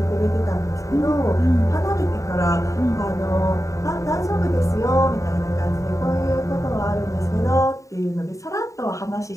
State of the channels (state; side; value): late; right; 0.16 ms